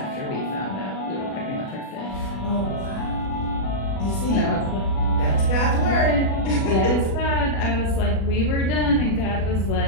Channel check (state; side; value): late; right; 36 ms